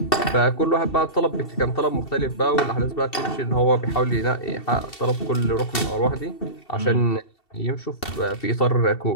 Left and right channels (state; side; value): late; right; 2.7 ms